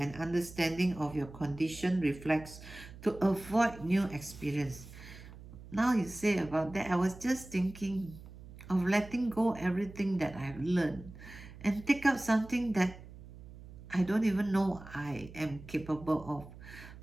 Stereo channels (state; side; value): noise; right; hum, 16 dB below the sound